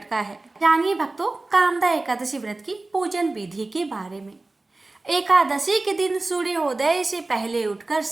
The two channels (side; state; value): left; quieter; 3.1 dB